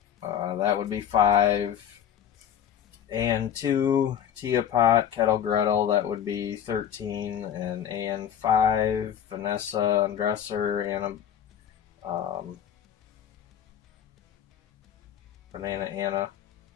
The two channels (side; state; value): right; quieter; 9.3 dB